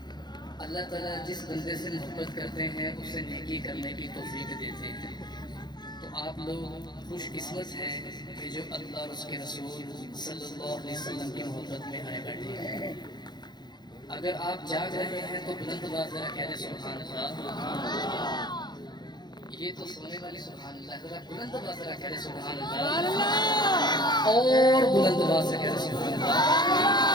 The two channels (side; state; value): right; late; 0.21 ms